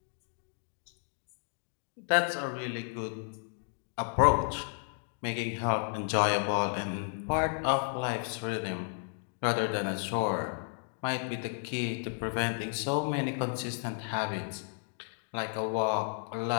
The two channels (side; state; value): right; silent; 56 dB below the other